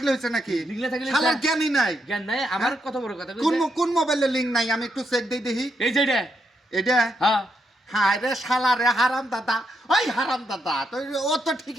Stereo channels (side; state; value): both; normal; correlation 0.80